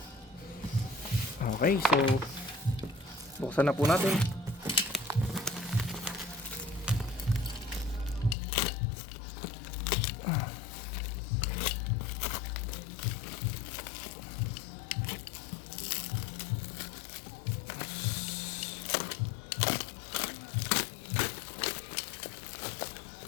Okay, so buksan na po natin.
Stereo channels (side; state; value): right; drops out; at 8.3 s